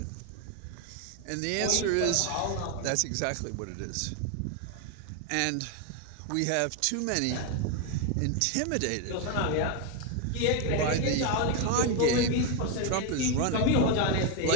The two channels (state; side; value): different; both; correlation 0.01